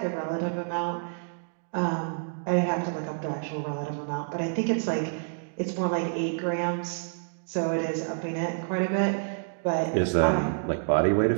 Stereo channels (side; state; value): left; silent; digital silence